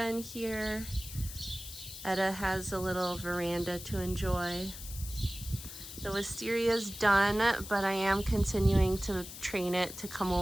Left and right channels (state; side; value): noise; left; hiss, 12 dB below the sound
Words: in here. Etta has a little veranda to enjoy. The wisteria's done, but I am continuing to train it to come